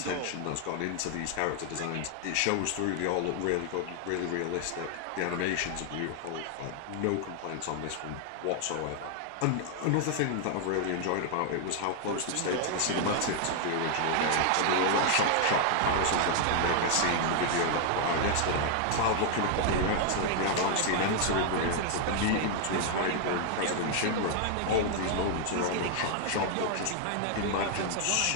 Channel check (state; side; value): different; both; correlation 0.00